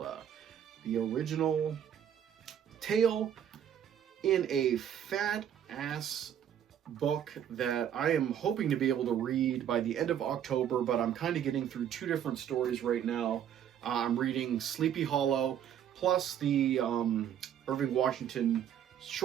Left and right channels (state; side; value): quieter; left; 9.6 dB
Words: The original tale in a fat-ass book that I am hoping to be able to read by the end of October, but I'm kind of getting through two different stories right now. I'm reading Sleepy Hollow, plus the Irving Washington